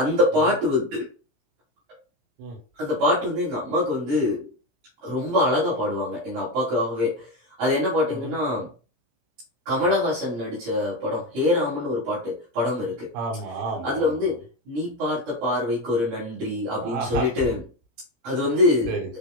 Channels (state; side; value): late; left; 17 ms